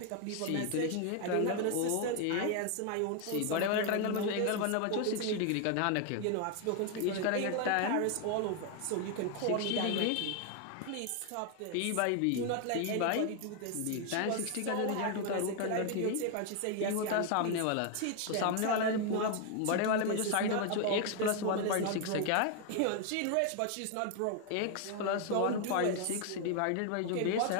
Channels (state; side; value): different; both; correlation 0.00